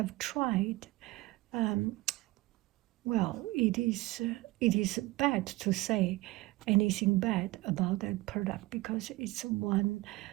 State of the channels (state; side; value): quieter; left; 19.3 dB